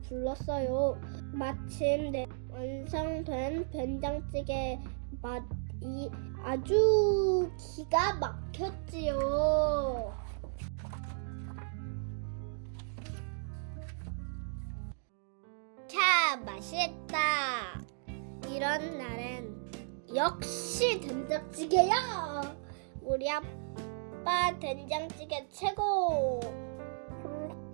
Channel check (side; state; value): left; silent; digital silence